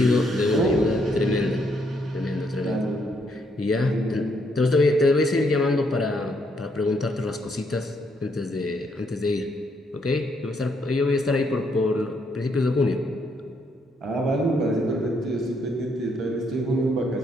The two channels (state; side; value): normal; both; correlation 0.73